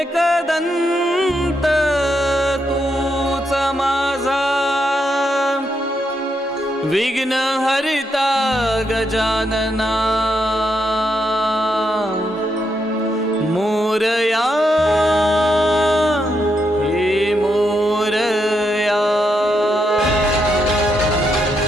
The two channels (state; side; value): normal; both; correlation 0.80